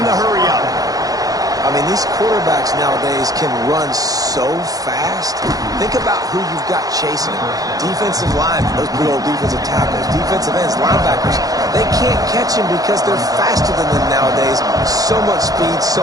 the hurry-up. I mean, these quarterbacks nowadays can run so fast. Think about who you've got chasing them. Defensive linemen, those big old defensive tackles, defensive ends, linebackers. They can't catch him because they're faster than them nowadays. So much speed, so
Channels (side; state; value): left; late; 0.18 ms